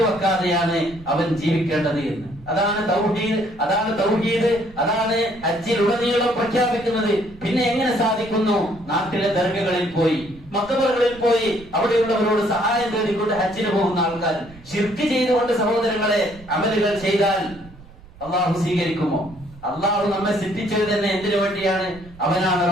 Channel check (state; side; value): noise; right; rumble, 21 dB below the sound